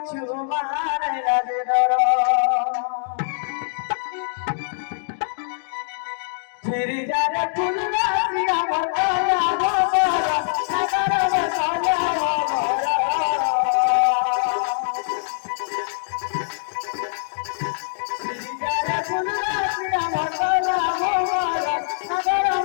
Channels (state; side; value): silent; right; digital silence